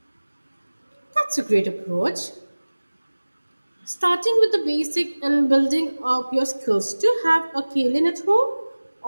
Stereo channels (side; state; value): both; inverted; correlation -1.00